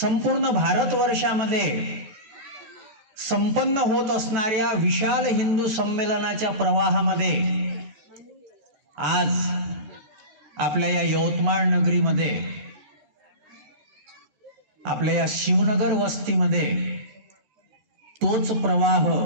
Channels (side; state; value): left; late; 14 ms